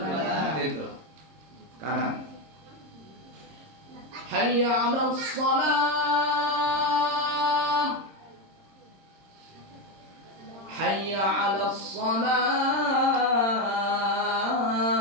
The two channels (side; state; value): left; late; 26 ms